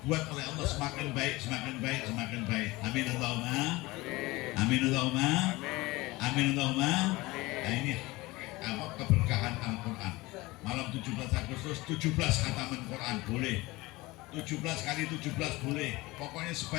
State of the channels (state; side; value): quieter; right; 21.1 dB